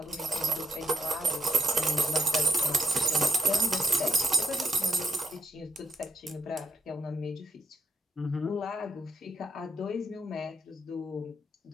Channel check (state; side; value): normal; both; correlation 0.77